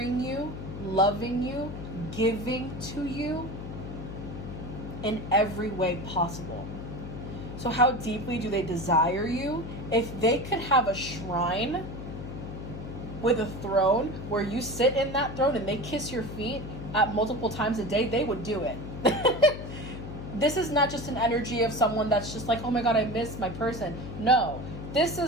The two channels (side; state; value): left; noise; hum, 9 dB below the sound